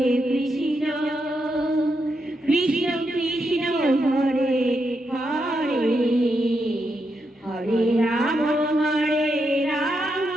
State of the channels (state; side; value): normal; both; correlation 0.83